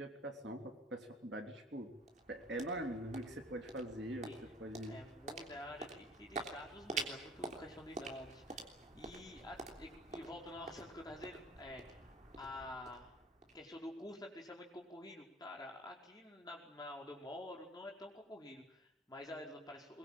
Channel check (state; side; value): normal; both; correlation 0.48